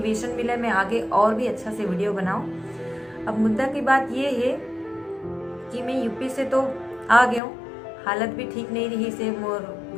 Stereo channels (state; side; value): drops out; right; at 7.4 s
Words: मिले, मैं आगे और भी अच्छा से वीडियो बनाऊँ। अब मुद्दा की बात ये है कि मैं यूपी से तो आ गया हूँ, हालत भी ठीक नहीं रही से मोर